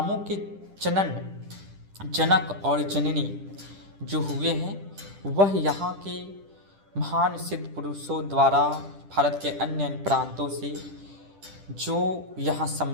के जनक और जननी जो हुए हैं, वह यहाँ के महान सिद्ध पुरुषों द्वारा भारत के अन्य अन्य प्रांतों से जो यहाँ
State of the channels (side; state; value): left; late; 10 ms